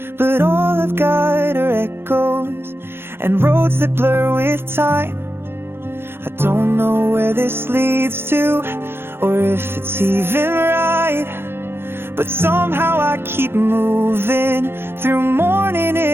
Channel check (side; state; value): left; late; 0.11 ms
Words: but all I've got are echoes and roads that blur with time. I don't know where this leads to or if it's even right, but somehow I keep moving through morning